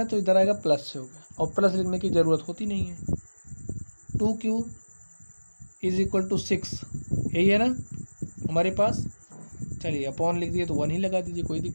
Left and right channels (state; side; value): inverted; both; correlation -1.00